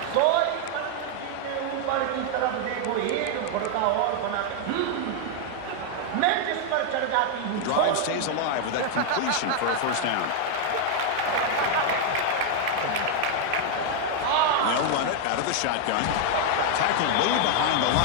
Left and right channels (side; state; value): both; different; correlation 0.00